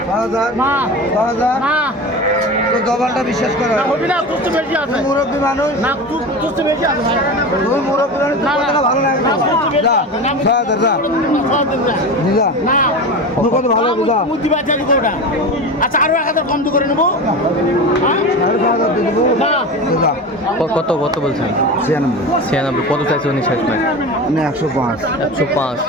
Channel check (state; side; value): normal; both; correlation 0.28